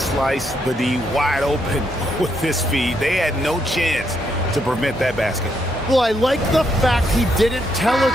the D wide open with his feet. They had no chance to prevent that basket. Well, I like the fact he didn't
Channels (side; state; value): both; normal; correlation 0.77